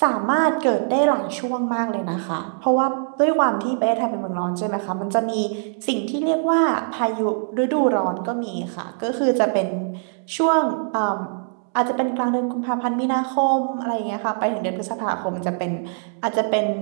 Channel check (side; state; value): left; silent; digital silence